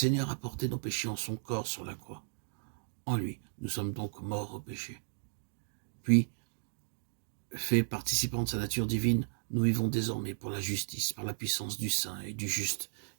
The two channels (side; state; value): left; silent; digital silence